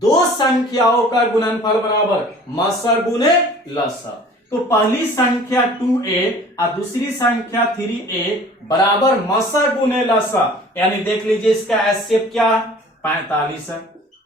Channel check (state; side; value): normal; both; correlation 0.48